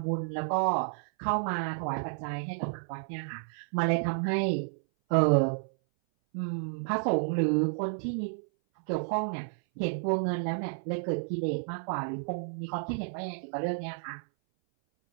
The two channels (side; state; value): left; silent; 57 dB below the other